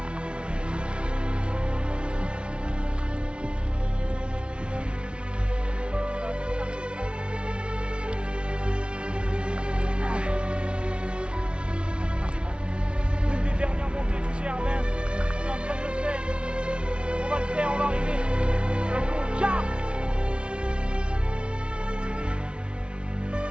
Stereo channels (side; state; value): left; late; 0.058 ms